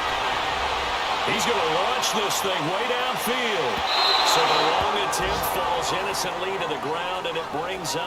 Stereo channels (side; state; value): both; identical; correlation 1.00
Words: He's going to launch this thing way downfield. So the long attempt falls innocently to the ground, and it brings